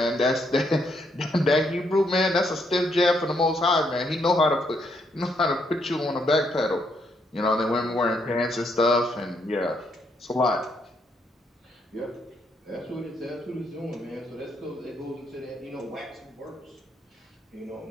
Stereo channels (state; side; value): normal; both; correlation 0.75